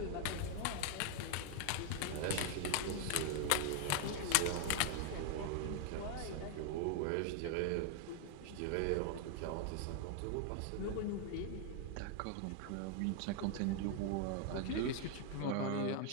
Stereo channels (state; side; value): different; both; correlation 0.00